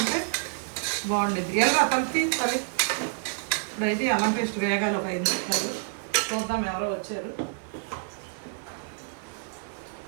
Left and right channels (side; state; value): left; silent; 58 dB below the other